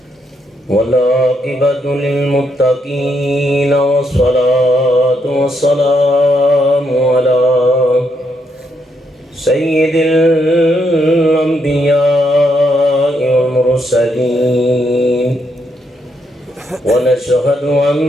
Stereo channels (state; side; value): normal; both; correlation 0.77